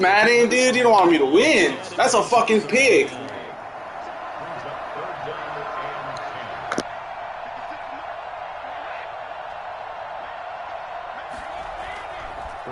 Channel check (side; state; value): both; identical; correlation 1.00